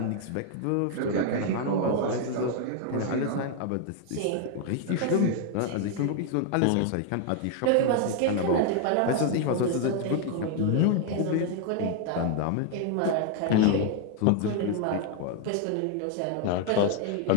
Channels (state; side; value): different; both; correlation 0.00